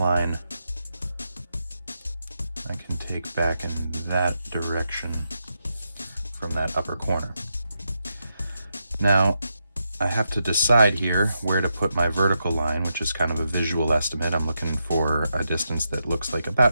I can take back in that direction from that upper corner. Now I have to decide here where to put my vertical line, which is kind of a visual estimate. I'm looking for a distance that looks like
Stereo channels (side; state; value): both; inverted; correlation -0.84